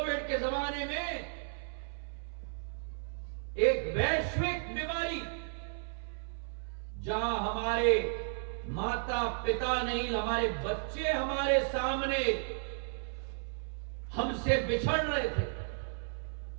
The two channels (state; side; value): silent; left; 55 dB below the other